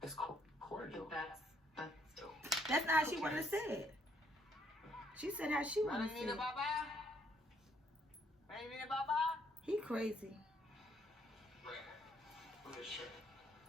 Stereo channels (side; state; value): both; normal; correlation 0.69